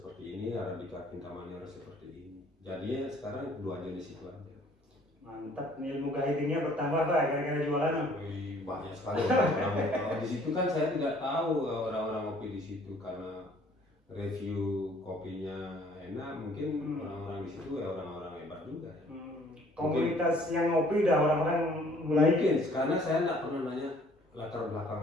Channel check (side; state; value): both; normal; correlation 0.58